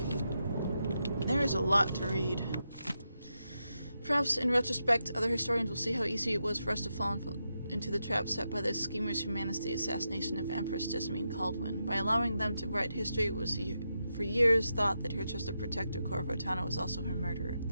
There is a lot to read. Perhaps, in retrospect, other historians will see how easy it was for us to fall into the trap set by the schemers who managed the assassination of Empress Jessamine Caldwin. By allowing them to write history, it was for years thought that her trusted protector Corvo Tano was also her murderer.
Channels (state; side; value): inverted; both; correlation -0.86